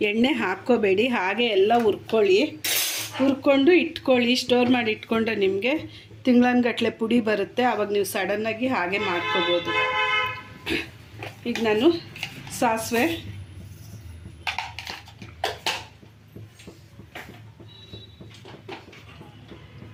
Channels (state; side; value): identical; both; correlation 1.00